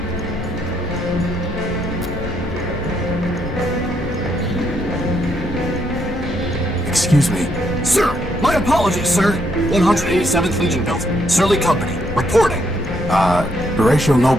Excuse me. Sir, my apologies, sir. 187th Legion built. Surly Company, reporting. Horatio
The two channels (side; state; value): both; normal; correlation 0.74